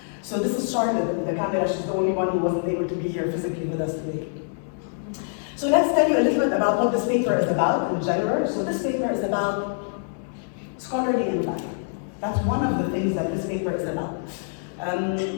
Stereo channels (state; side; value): silent; right; digital silence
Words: So this is Charlotte, the camera. She's the only one who wasn't able to be here physically with us today. So let's tell you a little bit about what this paper is about in general. So this paper is about scholarly impact. That's one of the things that this paper is about.